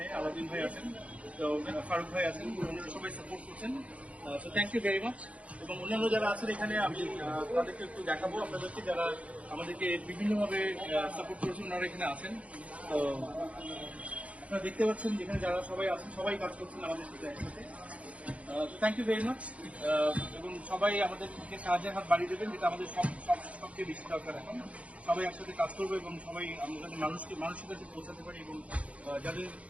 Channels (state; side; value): late; left; 0.064 ms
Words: আলাদিন ভাই আছেন, তো ফারুক ভাই আছেন, ওনারা সবাই সাপোর্ট করছেন। So thank you very much. এবং অন্যান্য যারা আছেন এখানে আমি তাদেরকে একটু দেখাবো আপনাদেরকে, যারা আমাদেরকে বিভিন্নভাবে সাপোর্ট করেছেন, ওনারা এখানে আছেন। তো আপনারা দেখতে পাচ্ছেন যেখানে যারা সবাই আছেন, সবাই কাজ করছেন আমাদের সাথে একসাথে। Thank you very much. এবং সবাই আমাদেরকে সাহায্যের হাত বাড়িয়ে দেবেন, যেটা আমাদের সবচেয়ে বেশি দরকার এখন। সবাই একসাথে কাজ করবো এবং সবাই আমরা যাতে মানুষের কাছে পৌঁছাতে পারি, এবং যাদের